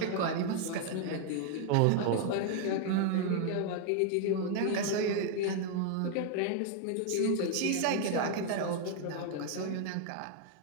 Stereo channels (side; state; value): both; different; correlation 0.00